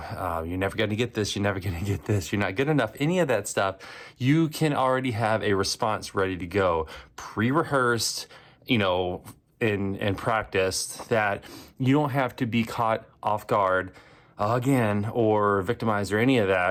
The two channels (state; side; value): identical; both; correlation 1.00